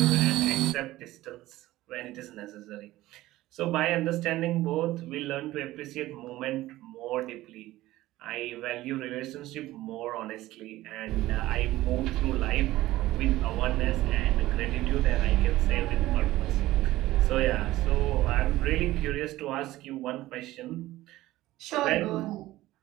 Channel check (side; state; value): left; quieter; 16.6 dB